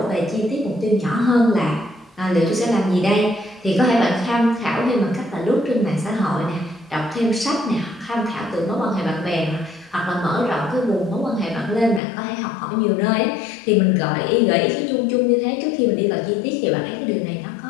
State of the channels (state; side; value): drops out; right; at 12.0 s